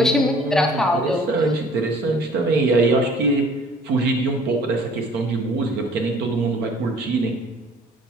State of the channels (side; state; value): both; normal; correlation 0.53